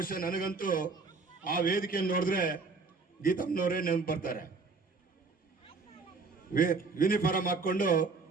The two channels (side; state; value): left; quieter; 4.2 dB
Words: ನನಗಂತೂ ಆ ವೇದಿಕೆಯನ್ನು ನೋಡಿದ್ರೆ ಗೀತಮ್ಮನವರೇ ನೆನಪು ಬರ್ತಾರೆ. ಯೂನಿಫಾರ್ಮ್ ಹಾಕೊಂಡು